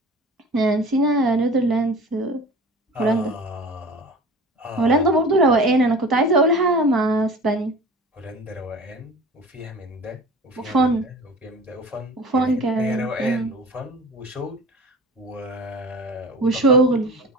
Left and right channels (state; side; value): normal; both; correlation 0.39